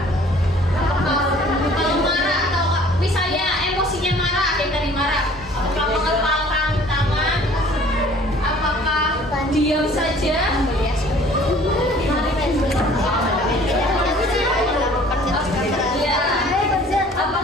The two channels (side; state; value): both; normal; correlation 0.52